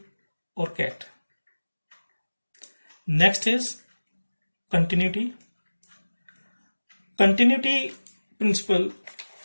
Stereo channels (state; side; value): inverted; both; correlation -1.00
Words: or cat. Next is continuity. Continuity principle